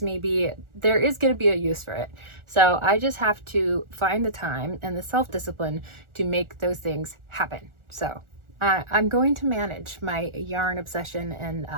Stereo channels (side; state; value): left; late; 1.4 ms